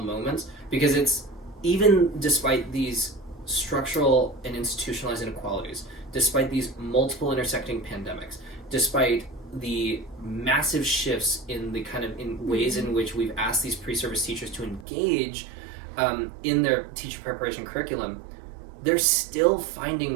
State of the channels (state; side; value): drops out; left; at 14.9 s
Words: moments, because it's, even despite these structural and institutionalized inequalities, despite these multiple intersecting pandemics, despite the massive shifts in the kind of in ways in which we've asked these pre-service teachers to engage in their teacher preparation curriculum, they're still